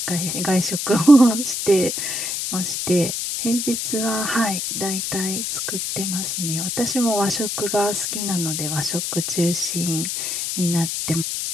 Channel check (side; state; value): left; noise; hiss, 2 dB below the sound